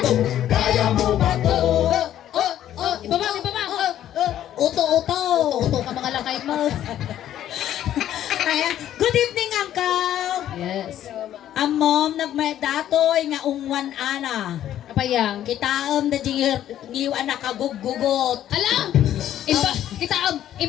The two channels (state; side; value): quieter; right; 11.6 dB